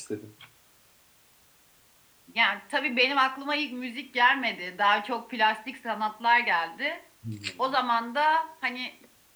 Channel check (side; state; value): both; identical; correlation 1.00